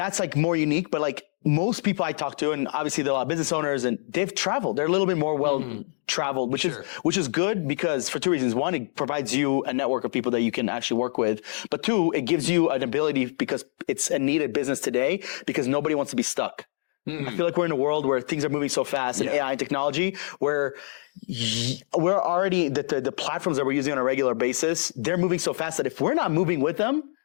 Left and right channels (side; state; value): right; silent; 61 dB below the other